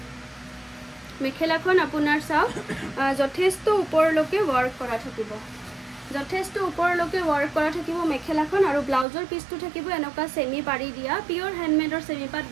মেখেলাখন আপোনাৰ চাওক যথেষ্ট ওপৰলৈকে ৱৰ্ক কৰা থাকিব যথেষ্ট ওপৰলৈকে ৱৰ্ক কৰা থাকিব মেখেলাখন আৰু ব্লাউজৰ পিচটো থাকিব এনেকুৱা সেমি পাৰি দিয়া পিওৰ হ্যান্ডমেডৰ সেমি পাট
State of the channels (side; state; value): left; drops out; at 9.1 s